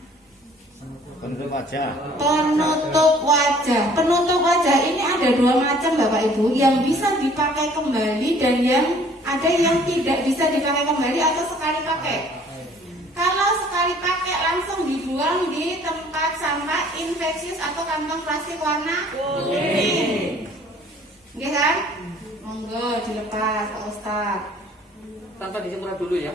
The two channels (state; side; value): normal; both; correlation 0.55